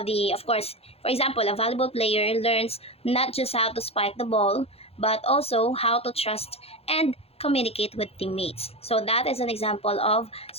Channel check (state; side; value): late; right; 0.29 ms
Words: of course, for example, a volleyball player learns not just how to spike the ball, but also how to trust and communicate with teammates. So that is an example of